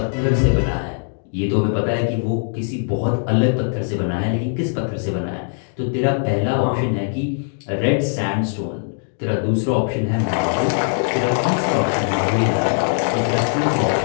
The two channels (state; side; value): silent; right; digital silence